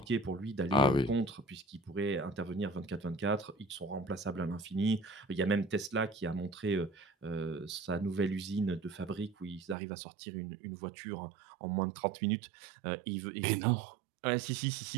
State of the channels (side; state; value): left; drops out; at 9.8 s